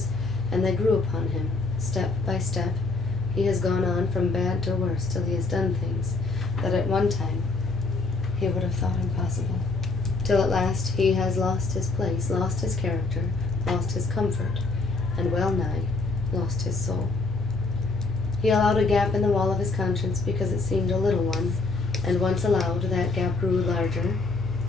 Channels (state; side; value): quieter; right; 3.6 dB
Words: and they grew upon him, step by step. He has gone on from bad to worse till he has done things that at one time he would have thought impossible, till at last he has lost his place, lost his character, lost his comfort, and well nigh lost his soul. He allowed a gap in the wall of his conscience because it seemed a little one, and once allowed, that gap grew larger